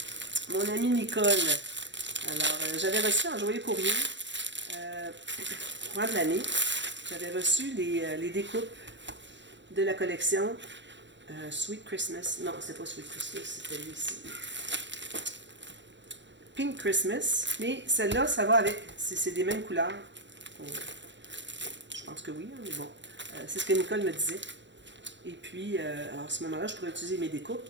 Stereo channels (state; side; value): late; left; 0.53 ms